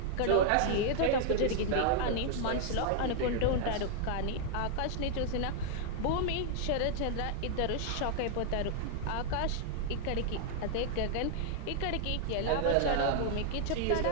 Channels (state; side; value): different; both; correlation -0.01